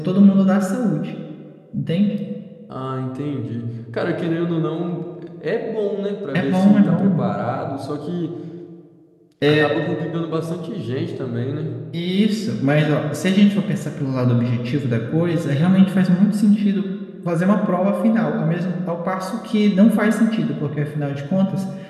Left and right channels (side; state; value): both; identical; correlation 1.00